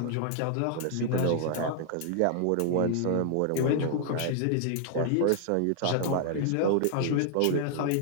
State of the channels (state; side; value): different; both; correlation -0.01